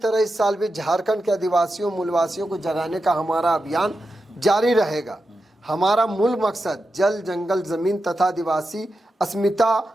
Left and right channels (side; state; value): both; normal; correlation 0.89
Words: इस साल भी झारखंड के आदिवासियों मूलवासियों को जगाने का हमारा अभियान जारी रहेगा। हमारा मूल मकसद जल, जंगल, जमीन तथा आदिवासी अस्मिता